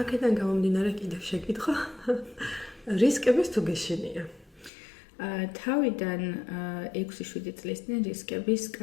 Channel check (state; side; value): drops out; right; at 4.7 s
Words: აქედან გამომდინარე კიდევ შეკითხვა, რისკების თუ გეშინია? თავიდან 6-7 წლის წინ რისკების